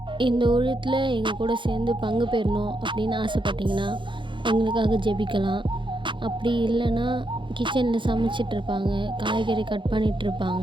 இந்த ஊழியத்தில் எங்கள் கூட சேர்ந்து பங்கு பெறணும் அப்படின்னு ஆசைப்பட்டிங்கன்னா எங்களுக்காக ஜெபிக்கலாம். அப்படி இல்லைன்னா கிச்சனில் சமைச்சிட்ருப்பாங்க, காய்கறி கட்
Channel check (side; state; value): left; late; 0.23 ms